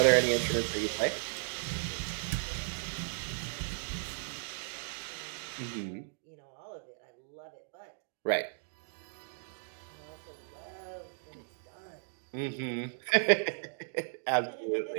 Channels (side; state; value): left; silent; digital silence